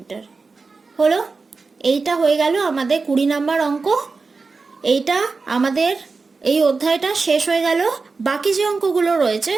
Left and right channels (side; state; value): left; quieter; 4.2 dB